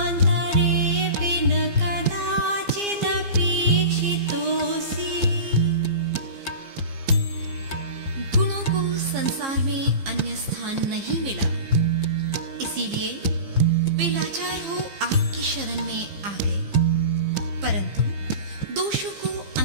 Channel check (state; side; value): late; left; 15 ms